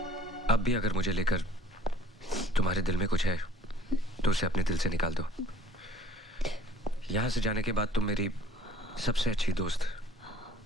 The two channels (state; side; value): normal; both; correlation 0.54